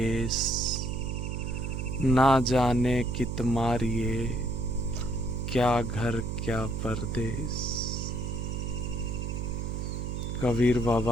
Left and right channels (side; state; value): right; noise; hum, 3 dB below the sound